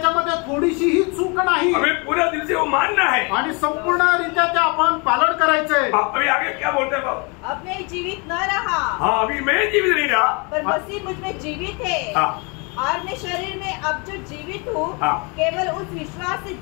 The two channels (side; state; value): right; quieter; 31.5 dB